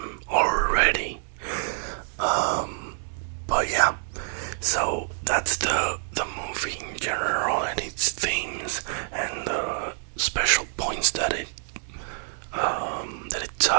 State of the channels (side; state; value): left; silent; digital silence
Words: already. But yeah, so that's the movie in general and its themes and the special points that it